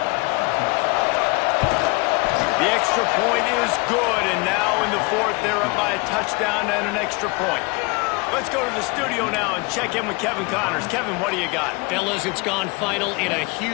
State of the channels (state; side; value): quieter; right; 26.9 dB